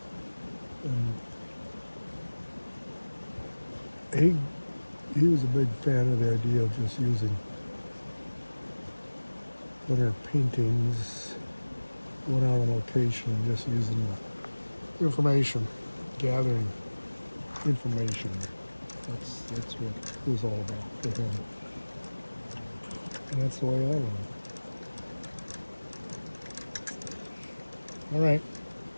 And he was a big fan of the idea of just using plein air paintings, going out on location and just using the information, gathering information. That's what it was all about for him. And that's the way I learned. All right.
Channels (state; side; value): inverted; both; correlation -1.00